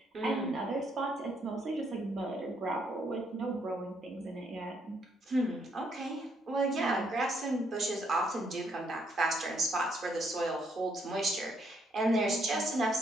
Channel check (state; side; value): normal; both; correlation 0.72